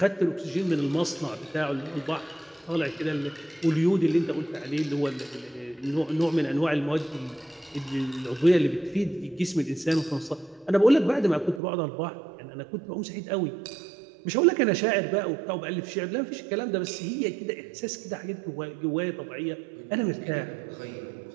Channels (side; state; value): left; drops out; at 11.6 s